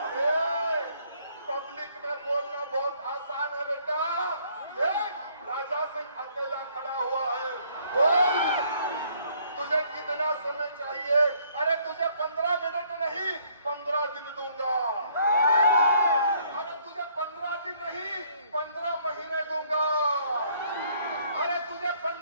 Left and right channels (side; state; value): both; inverted; correlation -0.64